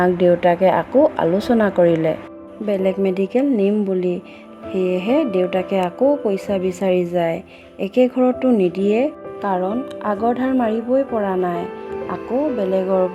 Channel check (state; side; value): identical; both; correlation 1.00